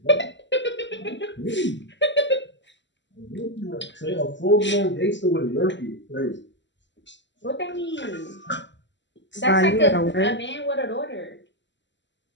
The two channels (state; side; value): late; right; 0.53 ms